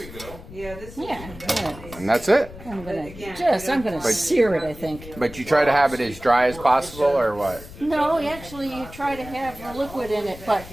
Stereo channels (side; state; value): left; noise; rumble, 16 dB below the sound